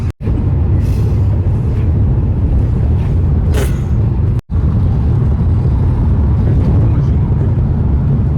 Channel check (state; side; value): identical; both; correlation 1.00